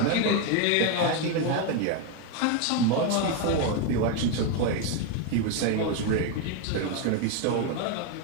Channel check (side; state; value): both; different; correlation 0.02